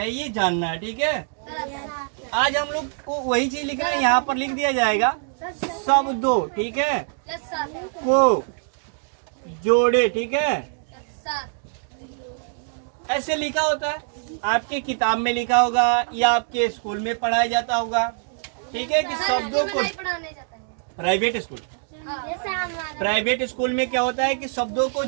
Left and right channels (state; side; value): silent; left; digital silence